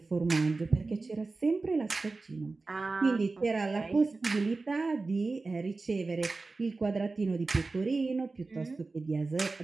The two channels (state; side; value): quieter; left; 3.7 dB